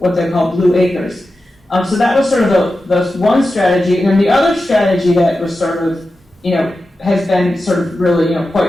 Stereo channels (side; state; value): both; normal; correlation 0.92